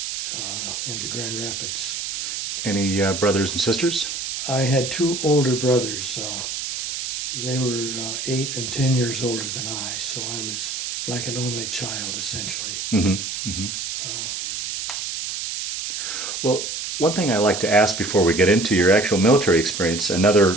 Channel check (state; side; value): noise; right; hiss, 4 dB below the sound